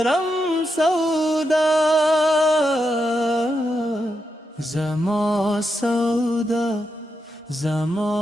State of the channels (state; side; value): normal; both; correlation 0.85